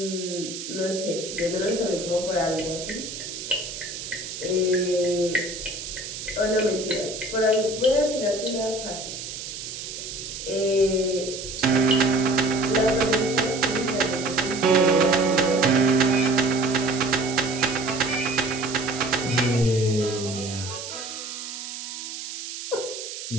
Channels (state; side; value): noise; right; hiss, 8 dB below the sound